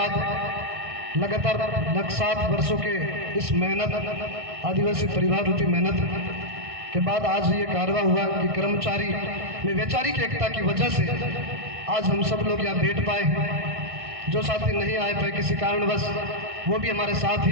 लगातार 7 वर्षों के इस मेहनत, आदिवासी परिवार रूपी मेहनत के बाद आज ये कारवा हुआ कि कर्मचारी में वैचारिक एकता की वजह से आज हम सब लोग यहाँ बैठ पाए। जो साथी नहीं आए पाए किसी कारणवश, वो भी हमारे साथ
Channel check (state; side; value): late; left; 1.6 ms